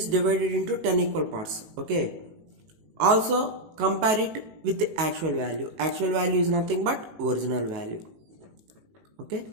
divided into 10 equal parts. Okay, also compare it with the actual value. Actual value is nothing but original value. Okay,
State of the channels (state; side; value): late; left; 18 ms